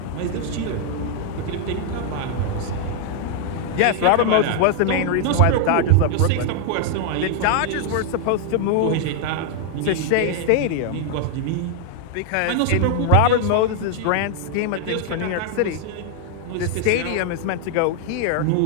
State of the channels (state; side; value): different; both; correlation 0.00